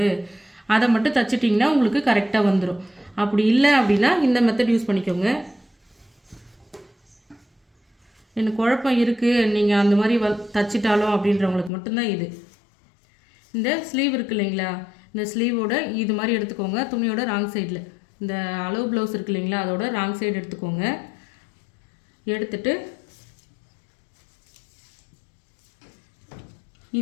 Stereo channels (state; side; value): drops out; right; at 11.7 s